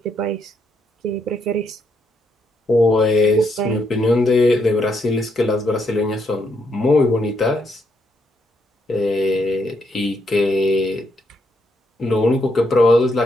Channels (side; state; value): both; normal; correlation 0.76